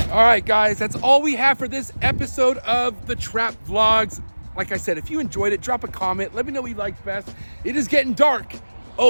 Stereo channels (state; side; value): inverted; both; correlation -1.00